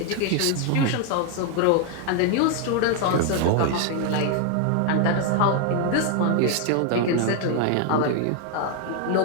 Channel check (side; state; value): both; different; correlation 0.00